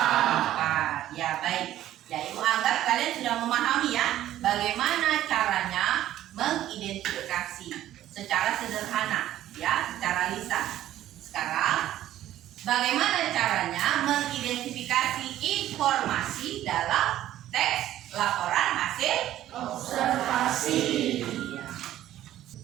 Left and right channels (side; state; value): left; quieter; 13.1 dB